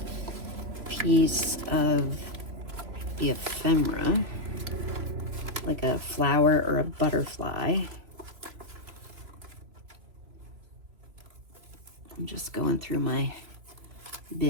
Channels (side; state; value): left; late; 3.0 ms